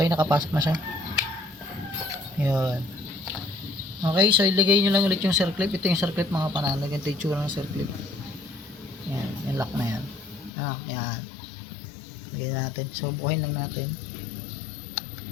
nakapasok na siya. Yun. Okay, so ilagay nyo lang ulit yung circlip. Ito yung circlip mga panalo. Ganito yung tsura ng circlip. Yan, yung lock na yan. Yan. Lagay natin. So, bukayin lang natin.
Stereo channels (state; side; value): drops out; right; at 10.5 s